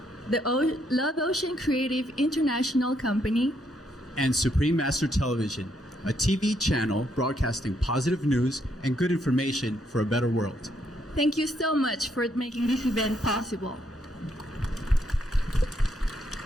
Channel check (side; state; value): both; normal; correlation 0.74